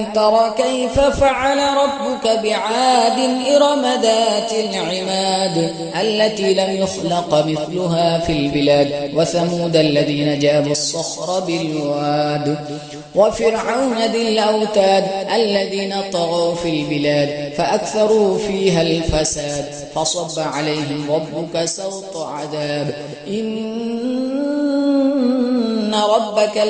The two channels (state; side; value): identical; both; correlation 1.00